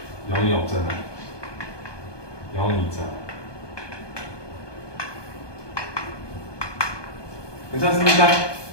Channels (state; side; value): late; right; 1.2 ms